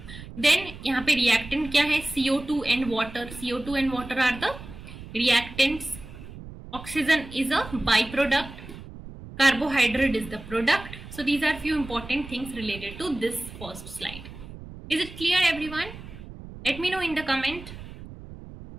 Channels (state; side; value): noise; right; rumble, 14 dB below the sound